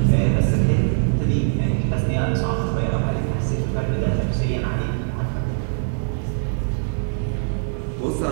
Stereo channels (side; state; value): left; silent; 64 dB below the other